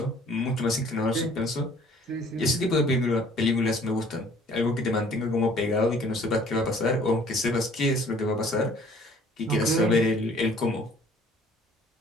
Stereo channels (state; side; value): normal; both; correlation 0.55